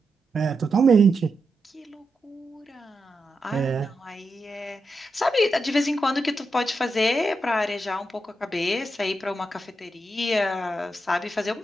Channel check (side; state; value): both; normal; correlation 0.86